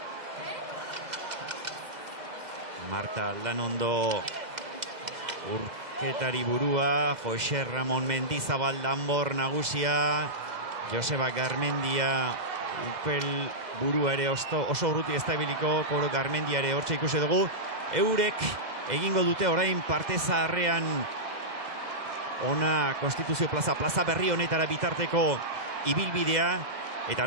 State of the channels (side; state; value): left; late; 2.0 ms